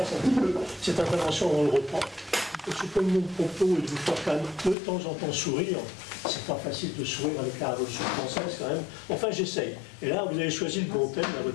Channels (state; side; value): drops out; right; at 4.8 s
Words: un petit peu cette intervention, on le reprend. C'est comme mon propos et de vous faire quand même de temps en temps sourire. C'est pas facile de sourire avec la Révolution française quand même. Enfin j'essaye. Et là vous avez choisi le bon thème, là,